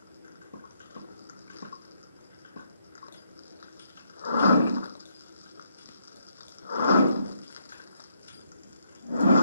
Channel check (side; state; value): both; inverted; correlation -0.74